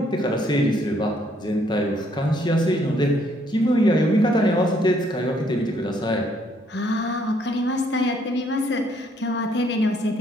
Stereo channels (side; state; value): both; normal; correlation 0.68